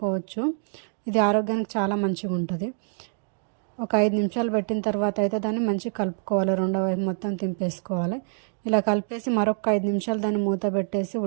ఇది ఆరోగ్యానికి చాలా మంచిగా ఉంటుంది. ఒక 5 నిమిషాలు పెట్టిన తర్వాత అయితే దాన్ని మంచిగా కలుపుకోవాలి. రెండో వైపు మొత్తం తింపేసుకోవాలి. ఇలా కలిపేసి మరొక 5 నిమిషాలు దాన్ని మూత పెట్టేసి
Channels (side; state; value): left; silent; digital silence